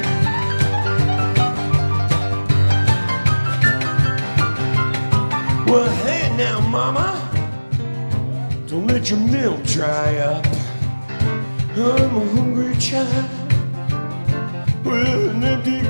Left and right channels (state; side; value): inverted; both; correlation -1.00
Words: Well, hey now, mama, don't let your milk dry up. I'm a hungry child with an empty